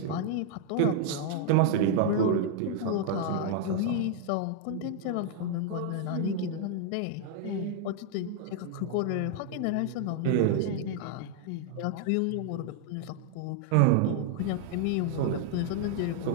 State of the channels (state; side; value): different; both; correlation 0.00